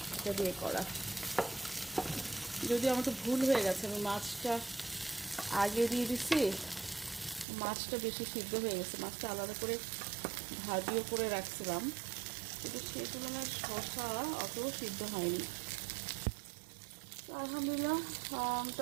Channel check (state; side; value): drops out; left; at 7.5 s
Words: এটা দিয়ে করা। যদি আমার তো ভুল হয়ে গেছে, আমি মাছটা আগে দিয়ে দিছি, মাছটা বেশি সিদ্ধ হয়ে গেছে। মাছটা আলাদা করে ভাজিও করে রাখছিলাম, কিন্তু সেই তুলনায় শসা অত সিদ্ধ হয়নি। আলহামদুলিল্লাহ,